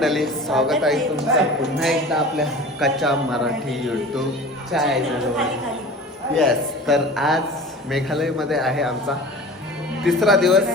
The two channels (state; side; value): normal; both; correlation 0.38